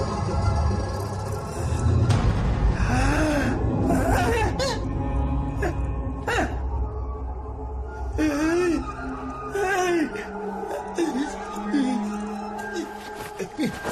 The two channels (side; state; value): both; identical; correlation 1.00